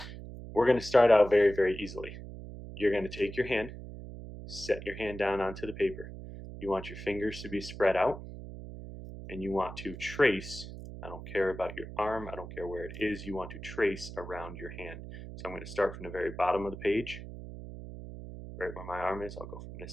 we're going to start out very, very easily. You're going to take your hand, set your hand down onto the paper. You want your fingers to be spread out, and you want to trace. I don't care about your arm, I don't care where it is, you want to trace around your hand. So I'm going to start from the very bottom of the page, right where my arm is. I'll go from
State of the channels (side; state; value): right; noise; hum, 11 dB below the sound